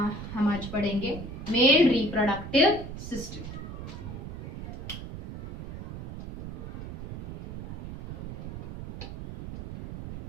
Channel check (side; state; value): right; noise; rumble, 9 dB below the sound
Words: आज पढ़ेंगे मेल रिप्रोडक्टिव सिस्टम।